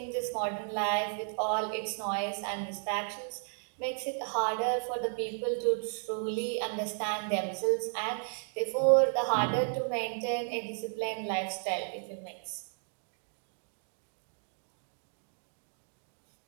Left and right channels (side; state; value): left; silent; 55 dB below the other